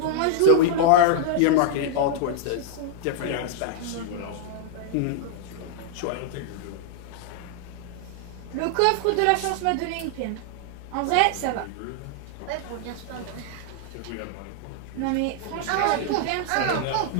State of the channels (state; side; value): different; both; correlation -0.01